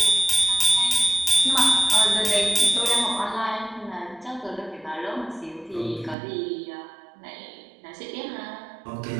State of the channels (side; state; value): left; drops out; at 6.2 s